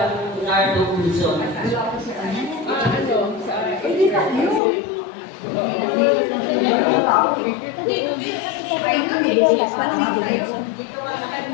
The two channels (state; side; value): drops out; right; at 4.6 s